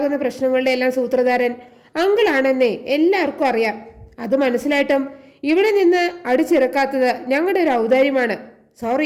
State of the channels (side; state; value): both; identical; correlation 1.00